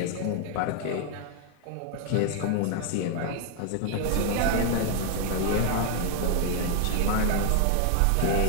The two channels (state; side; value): different; both; correlation 0.00